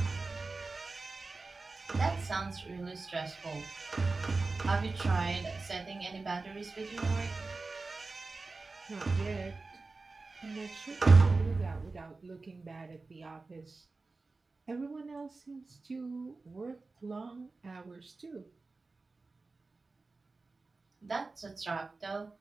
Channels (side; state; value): left; quieter; 3.7 dB